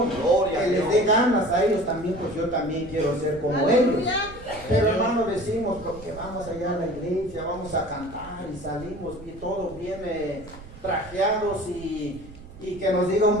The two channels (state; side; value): noise; right; rumble, 17 dB below the sound